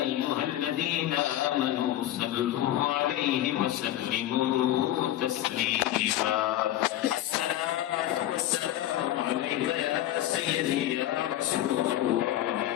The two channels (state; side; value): quieter; right; 13.4 dB